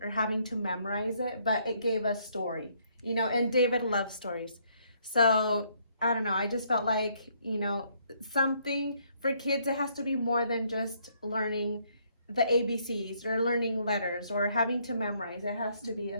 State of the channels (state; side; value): inverted; both; correlation -0.68